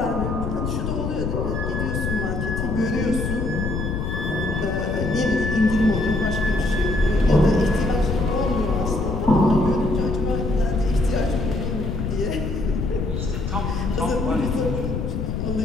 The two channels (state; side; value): noise; left; rumble, 2 dB below the sound